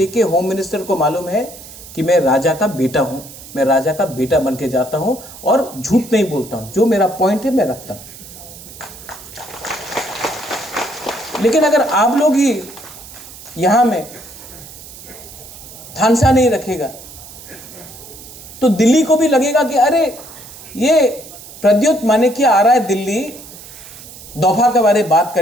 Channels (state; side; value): noise; right; hiss, 16 dB below the sound